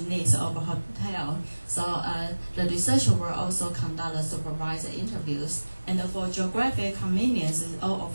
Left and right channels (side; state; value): both; inverted; correlation -1.00